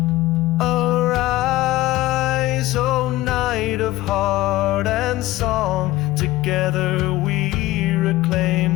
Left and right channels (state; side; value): quieter; right; 17.2 dB